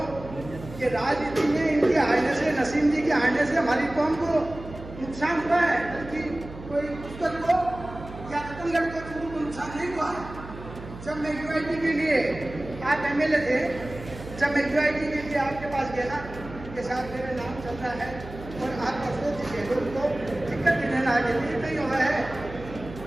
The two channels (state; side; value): noise; right; hum, 14 dB below the sound